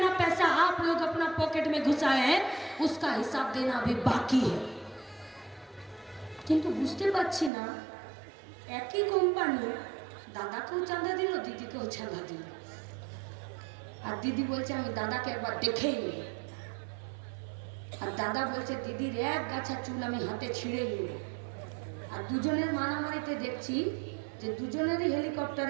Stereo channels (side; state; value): left; drops out; at 7.5 s